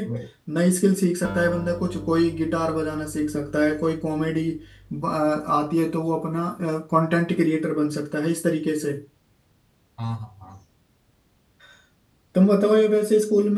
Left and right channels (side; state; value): both; identical; correlation 1.00